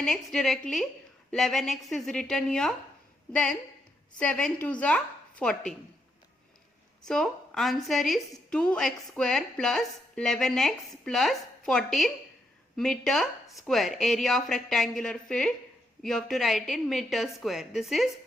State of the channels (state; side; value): normal; both; correlation 0.79